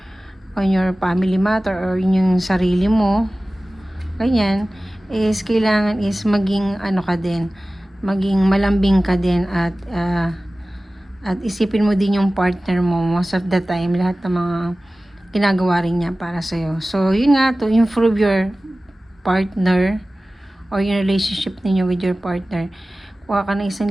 your family matter or yung sarili mo, ganyan, is kailangan is maging ano ka din, maging malambing ka din, at isipin mo din yung partner mo most of the time, lahat ng mga ginagawa rin niya para sa'yo. So, yun nga, to improve your partner or yung relationship ninyo with your partner, kuha ka ng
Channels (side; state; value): both; normal; correlation 0.97